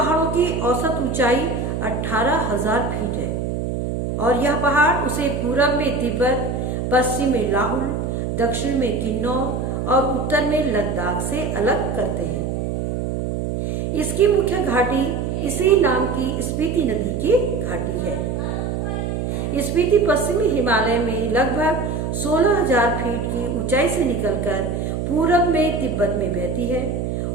की औसत ऊंचाई 18,000 फीट है और यह पहाड़ उसे पूरब में तिब्बत, पश्चिम में लाहुल, दक्षिण में किन्नौर और उत्तर में लद्दाख से अलग करते हैं। इसकी मुख्य घाटी इसी नाम की स्पीति नदी की घाटी है। स्पीति पश्चिमी हिमालय में लगभग 16,000 फीट की ऊंचाई से निकलकर पूरब में तिब्बत में बहती है।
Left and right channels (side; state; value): right; noise; hum, 2 dB below the sound